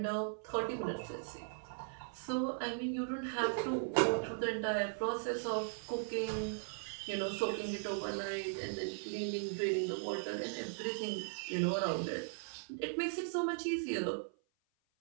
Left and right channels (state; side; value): silent; left; 52 dB below the other